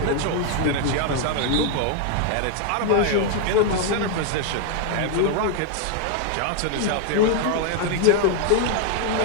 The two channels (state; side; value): different; both; correlation 0.00